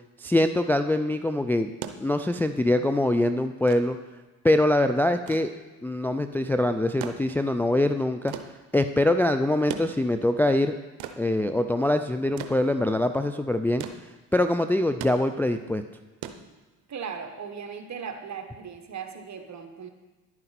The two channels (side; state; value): both; normal; correlation 0.85